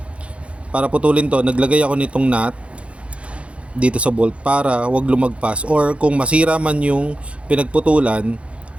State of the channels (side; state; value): left; late; 0.061 ms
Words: para putulin to, naglagay ako nitong nut dito sa bolt para wag lumagpas, or kung masira man yung pinagputulan,